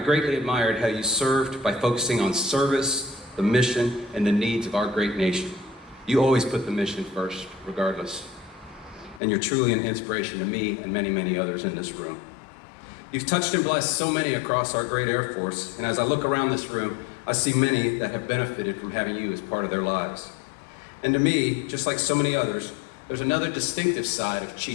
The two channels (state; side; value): drops out; right; at 9.2 s